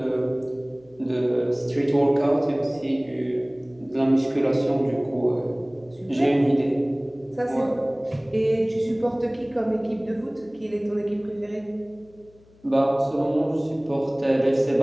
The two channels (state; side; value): noise; left; hum, 28 dB below the sound